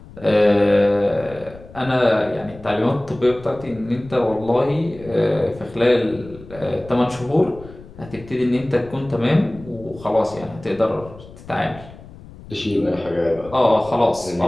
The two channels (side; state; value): left; noise; rumble, 19 dB below the sound